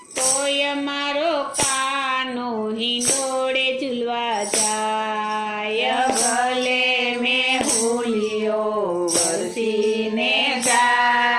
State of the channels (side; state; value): both; identical; correlation 1.00